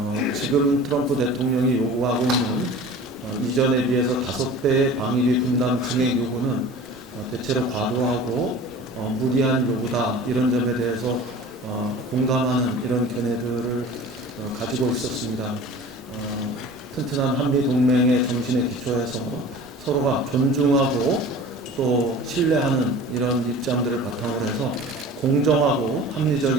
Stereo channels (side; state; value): both; normal; correlation 0.40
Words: 지금 트럼프 대통령이 요구하고 있는 이전에 비해서 5배의 방위비 분담 증액 요구는 대체로 과도하고 무리한 요구다 이런 점에 대해서 공감하는 이런 견해들을 가지고 있었습니다. 튼튼한 한미 동맹의 정신에 기초해서 서로가 존중하고 또 신뢰하는 이런 입장들을 바탕으로 해서 공정하고